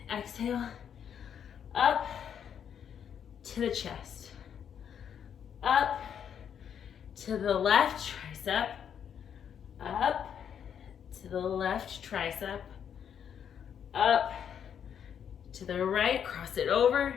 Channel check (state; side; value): quieter; right; 8.4 dB